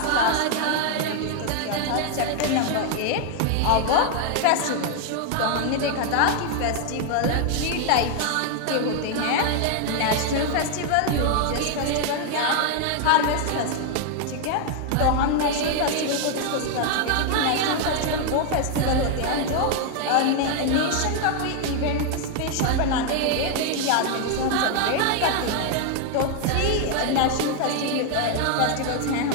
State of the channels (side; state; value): both; different; correlation 0.00